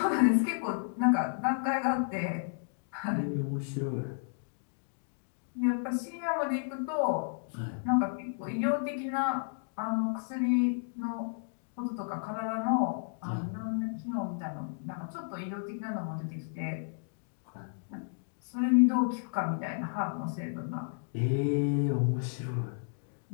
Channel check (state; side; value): silent; right; digital silence